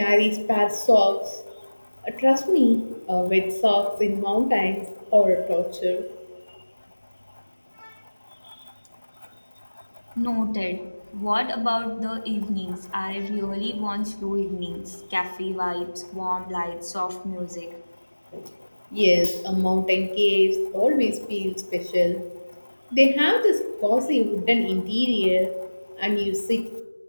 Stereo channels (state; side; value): inverted; both; correlation -1.00